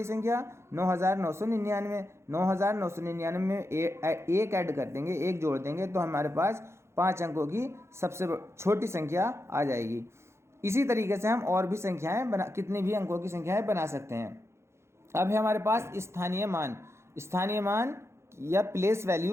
संख्या 9999। 9999 में एक ऐड कर देंगे, एक जोड़ देंगे तो हमारे पास 5 अंकों की सबसे छोटी संख्या आ जाएगी। इसी तरीके से हम और भी कितनी भी अंकों की संख्याएं बना सकते हैं। अब है हमारे पास स्थानीय मान। स्थानीय मान या प्लेस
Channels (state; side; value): late; left; 0.13 ms